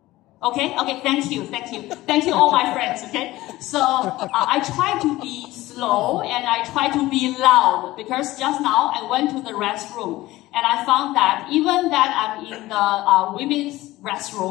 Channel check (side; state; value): right; quieter; 17.6 dB